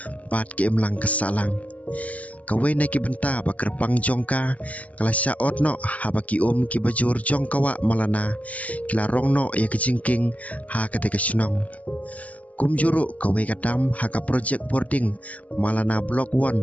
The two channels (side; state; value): right; late; 0.072 ms